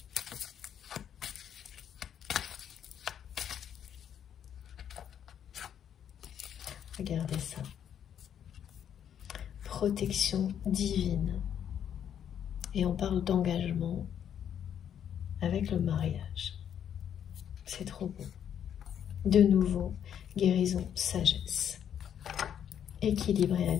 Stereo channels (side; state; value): right; quieter; 9.1 dB